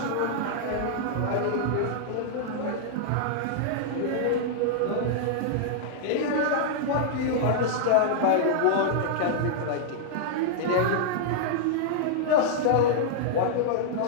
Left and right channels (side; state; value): both; different; correlation -0.02